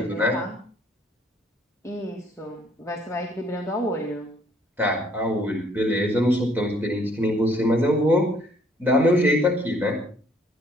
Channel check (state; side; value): normal; both; correlation 0.63